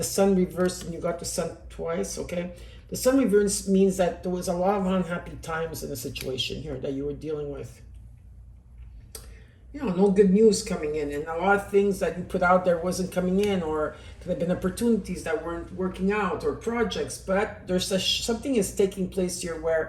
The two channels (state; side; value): identical; both; correlation 1.00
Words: Sun reversed and you got the Sun twice, okay? The Sun reverse means that there was a lot of unhappy times in the situation here that you were dealing with. You know, no good news coming in, and a lot of things that you put out there wasn't coming in, or could have been opportunities that weren't working out, or projects. But there's something is taking place here